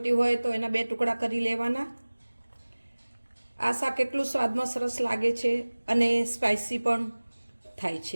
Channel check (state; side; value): inverted; both; correlation -1.00